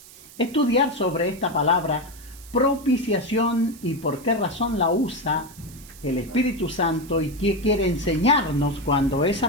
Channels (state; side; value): noise; right; hiss, 20 dB below the sound